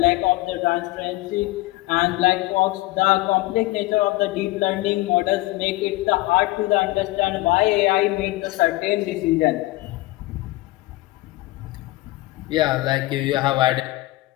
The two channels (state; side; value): quieter; right; 19.4 dB